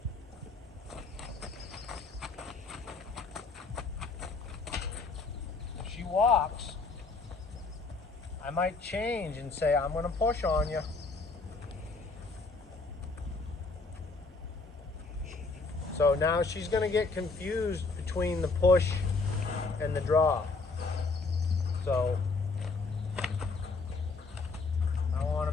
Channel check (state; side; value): quieter; right; 3.9 dB